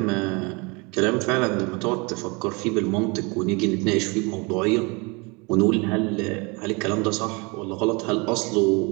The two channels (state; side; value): quieter; left; 28.7 dB